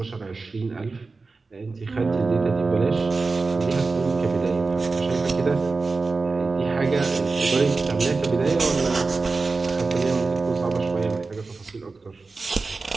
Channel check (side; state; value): left; quieter; 4.0 dB